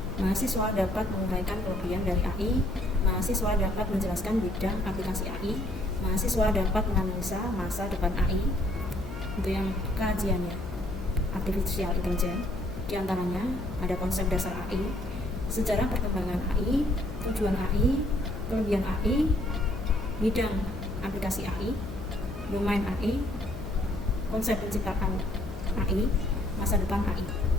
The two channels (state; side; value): noise; left; hum, 12 dB below the sound